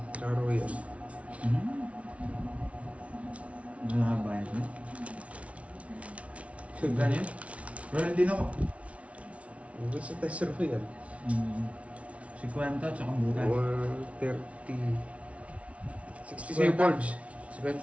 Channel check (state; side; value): late; left; 0.064 ms